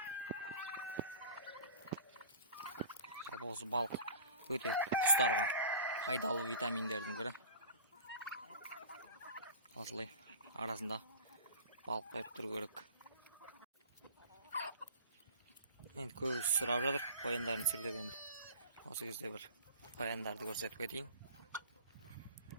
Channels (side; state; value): both; inverted; correlation -0.40